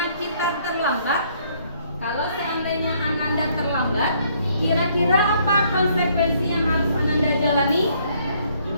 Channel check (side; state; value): both; inverted; correlation -0.66